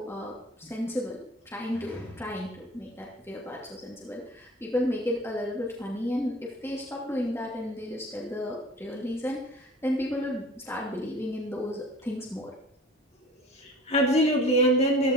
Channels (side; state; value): both; normal; correlation 0.43